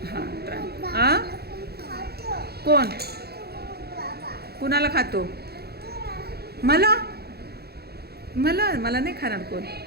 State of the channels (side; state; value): left; late; 0.46 ms